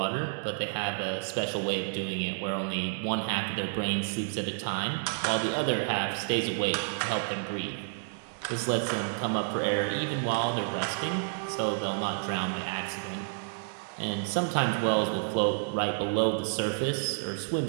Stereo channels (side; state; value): left; silent; digital silence